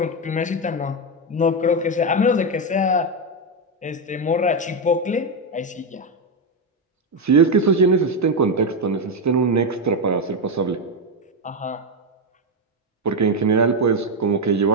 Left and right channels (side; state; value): both; normal; correlation 0.07